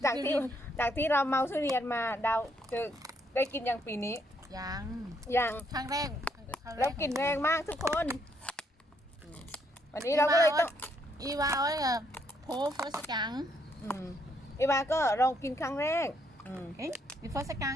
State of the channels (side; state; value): both; normal; correlation 0.73